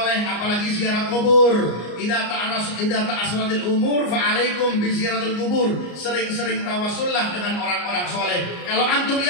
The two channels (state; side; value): late; right; 34 ms